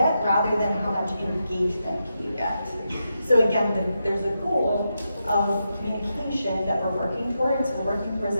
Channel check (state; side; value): inverted; both; correlation -0.86